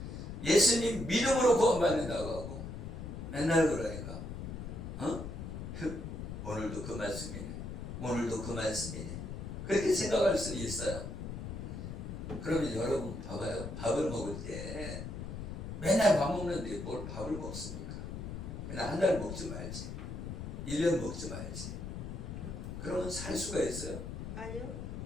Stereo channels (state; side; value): noise; left; rumble, 7 dB below the sound